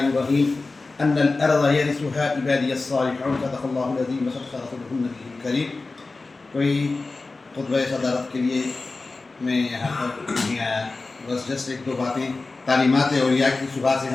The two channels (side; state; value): right; quieter; 3.6 dB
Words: الرحيم. أن الأرض يرثها عبادي الصالحون. صدق الله العظيم وصدق رسوله النبي الكريم. کوئی خطبہ صدارت کے لیے میں یہاں پر بس جسٹ ایک دو باتیں تعلیمات اولیاء کی صبح سے